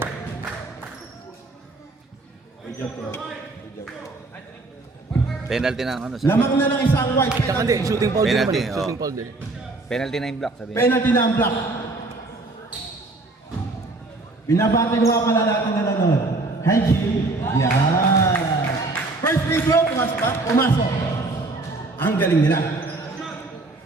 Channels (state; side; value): quieter; left; 3.2 dB